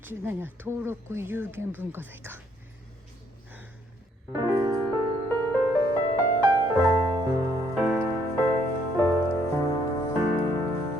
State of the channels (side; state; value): both; normal; correlation 0.68